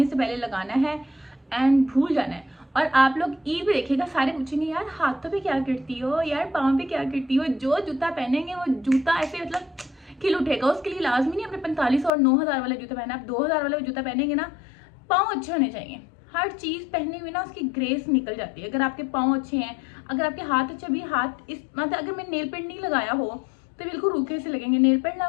से पहले लगाना है एंड भूल जाना है। और आप लोग ईद देखिएगा, सारे पूछेंगे यार हाथों पे क्या करती हो, यार पाँव पे क्या करती हो। जो जूता पहनेंगे वो जूता ऐसे मतलब खिल उठेगा। उसके लिए लाजमी नहीं अपने 45 और 9000 वाला जूता पहना। आप 2000 वाला जूता पहनेंगे ना, पाँव अच्छे होने चाहिए। हर चीज पहने हुए ना उसकी ग्रेस निकल जाती है। अगर आपके पाँव अच्छे हैं, अगर आपके हाथ अच्छे, भी हाथ इस मतलब अगर मैं नेल पेंट नहीं लगाया हो तो बिल्कुल रूखे से लगेंगे। नेल पेंट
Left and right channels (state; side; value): drops out; right; at 12.1 s